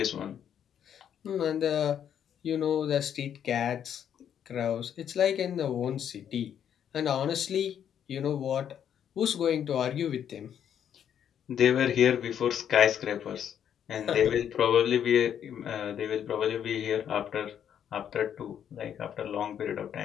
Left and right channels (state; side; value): quieter; right; 9.1 dB